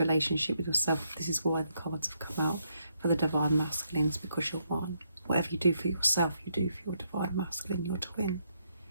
with yourself, this is why the cards have come out for the divine masculines, because you're one. Whatever you do for yourself, you do for your divine masculine, your twin.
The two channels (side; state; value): both; inverted; correlation -0.77